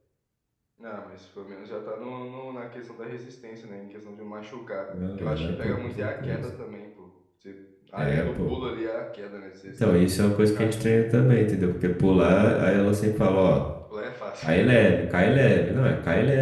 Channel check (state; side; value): identical; both; correlation 1.00